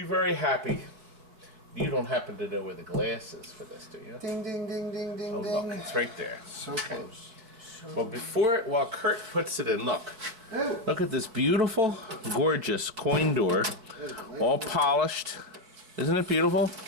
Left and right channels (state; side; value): late; left; 4.5 ms